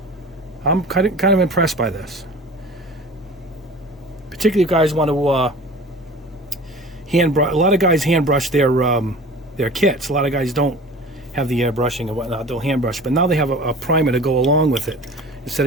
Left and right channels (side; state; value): both; normal; correlation 0.40